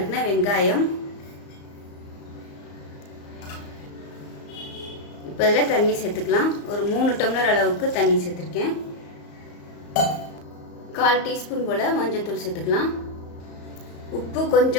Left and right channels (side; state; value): right; late; 34 ms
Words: வெங்காயம். இப்போ இதில் தண்ணி சேர்த்துக்கலாம். ஒரு 3 டம்ளர் அளவுக்கு தண்ணி சேர்த்துருக்கேன். 1/4 டீஸ்பூன் போல் மஞ்சள்தூள் சேர்த்துக்கலாம். உப்பு